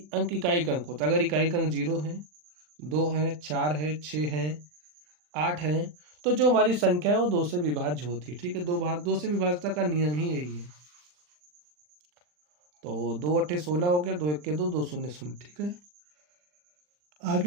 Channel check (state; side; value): late; left; 40 ms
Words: अंक इकाई अंक होता है। अगर इकाई अंक 0 है, 2 है, 4 है, 6 है, 8 है, तो जो हमारी संख्या है वो 2 से विभाज्य होती है। ठीक है, 2 से विभाज्यता का नियम ही यही है। तो 2 अठे 16 हो गया, 2 इक्के 2, 2 शून्य शून्य। ठीक है,